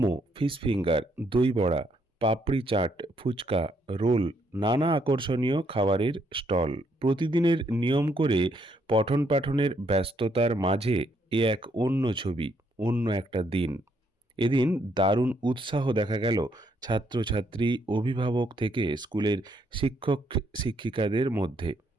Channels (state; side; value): normal; both; correlation 0.73